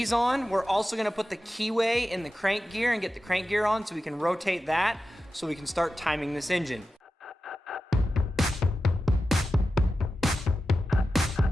on. We're also gonna put the keyway in the crank gear and get the crank gear on so we can rotate that so we can start timing this engine.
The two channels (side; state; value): both; normal; correlation 0.93